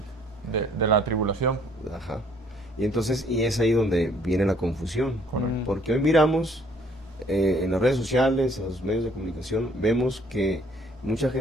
de la tribulación. Ajá. Y entonces, y es ahí donde viene la confusión. Correcto. Porque hoy miramos en las redes sociales, en los medios de comunicación, vemos que mucha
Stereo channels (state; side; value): normal; both; correlation 0.61